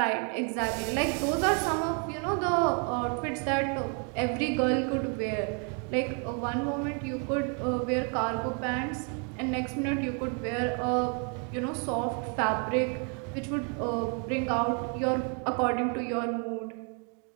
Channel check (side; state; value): left; quieter; 38.5 dB